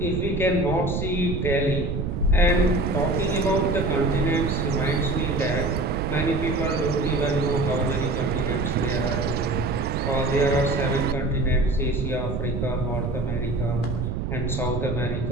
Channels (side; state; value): right; noise; rumble, 2 dB below the sound